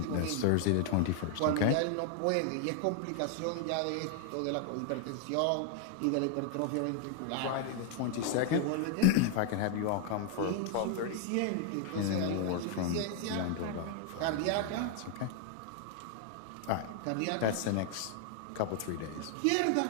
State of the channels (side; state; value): both; different; correlation 0.00